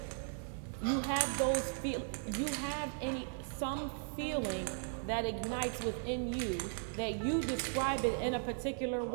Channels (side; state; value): left; silent; 53 dB below the other